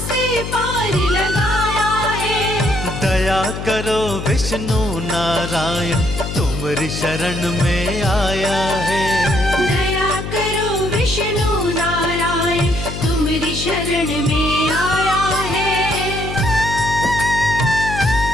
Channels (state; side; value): noise; left; hum, 7 dB below the sound